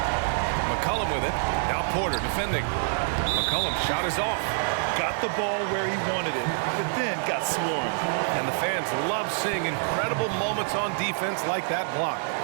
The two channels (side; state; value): left; silent; digital silence